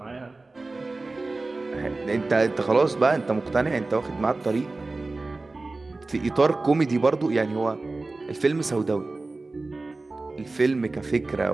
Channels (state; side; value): quieter; left; 3.3 dB